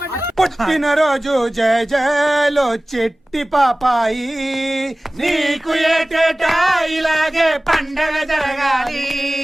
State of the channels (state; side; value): normal; both; correlation 0.98